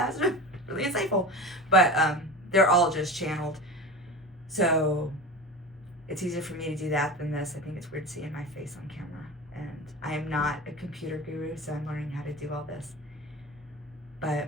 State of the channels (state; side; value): normal; both; correlation 0.30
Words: really insightful, but they're all just channeled. So it's easier for me to do that than this. I think it's weird seeing my face on camera, and I am not a computer guru, so I'm learning how to do all this.